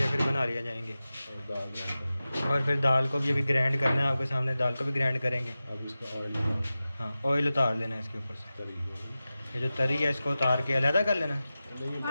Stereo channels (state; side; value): inverted; both; correlation -0.95